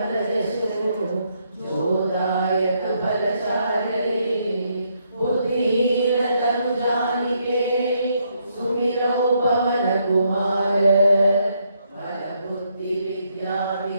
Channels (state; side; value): inverted; both; correlation -0.75